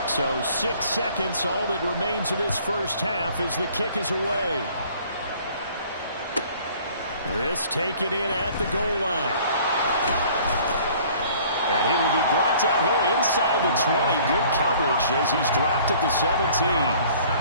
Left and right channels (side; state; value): both; inverted; correlation -0.54